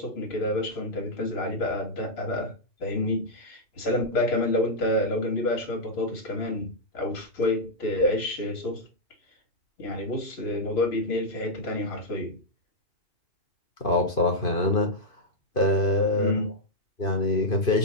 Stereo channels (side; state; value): right; late; 2.5 ms